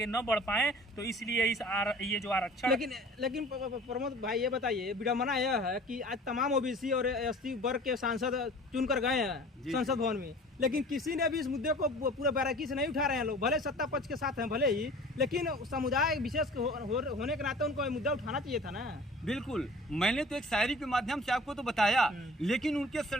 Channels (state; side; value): normal; both; correlation 0.45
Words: न बढ़ पाएं। तो इसलिए ये जो आरक्षण। लेकिन प्रमोद भाई, ये बताइए, विडम्बना यह है कि आज तमाम ओबीसी और एसटी वर्ग के सांसद चुनकर गए हैं संसद भवन में, लेकिन किसी ने भी इस मुद्दे को पूरे बारीकी से नहीं उठा रहे हैं। लोग भले सत्ता पक्ष के साथ हैं भले ही, लेकिन समुदाय विशेष होने के नाते उनको मुद्दा उठाना चाहिए था ना। बिल्कुल, मैंने तो एक शायरी के माध्यम से आपको तो बताया, लेकिन उनके